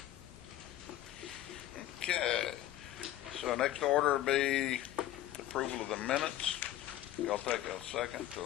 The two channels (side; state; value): right; quieter; 13.7 dB